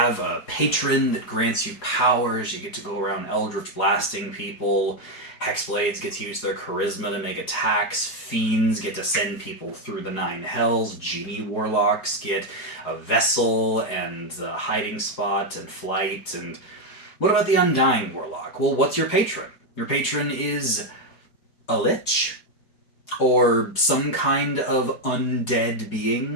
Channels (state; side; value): late; right; 4.8 ms